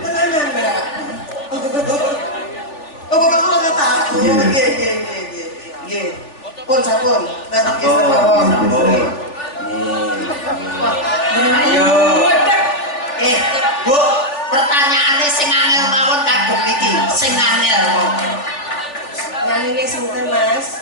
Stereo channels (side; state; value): right; late; 3.4 ms